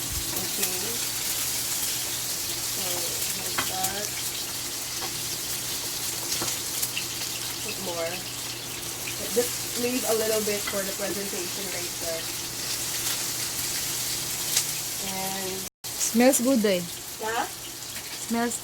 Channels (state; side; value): identical; both; correlation 1.00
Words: Okay. So, like that. Put more. Just leave a little bit for the presentation later. And Smells good eh. yeah. Smells